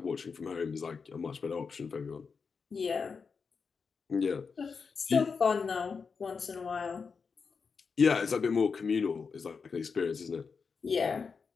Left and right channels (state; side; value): quieter; right; 5.4 dB